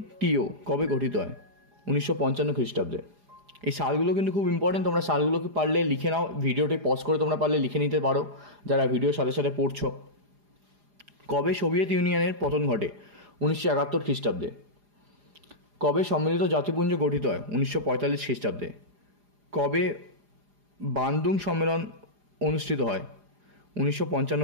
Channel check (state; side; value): late; left; 4.9 ms